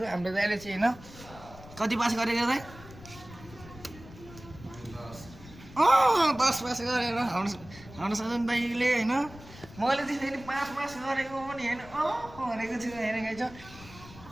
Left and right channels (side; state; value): left; noise; rumble, 18 dB below the sound